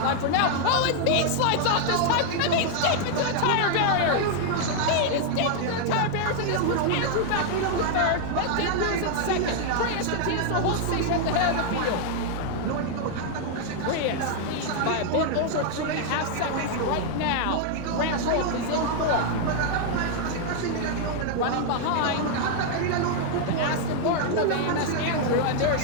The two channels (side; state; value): both; different; correlation 0.00